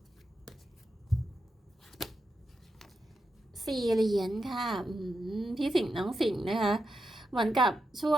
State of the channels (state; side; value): normal; both; correlation 0.87